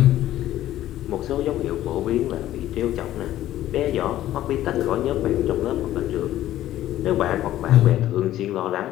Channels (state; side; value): quieter; right; 13.5 dB